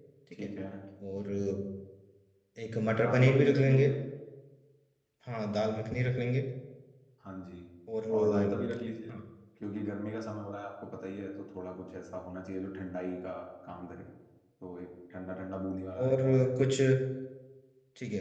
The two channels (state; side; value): identical; both; correlation 1.00